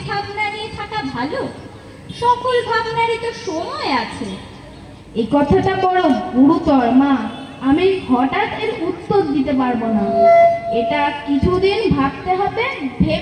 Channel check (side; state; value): both; identical; correlation 1.00